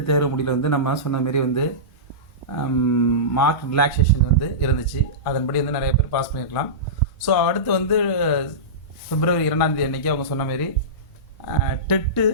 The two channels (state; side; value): normal; both; correlation -0.19